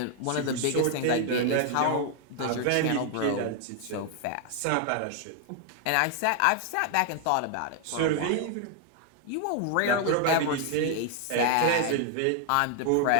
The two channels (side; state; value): both; different; correlation 0.00